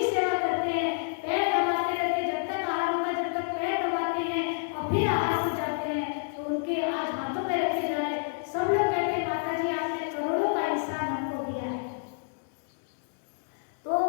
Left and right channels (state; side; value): silent; right; 59 dB below the other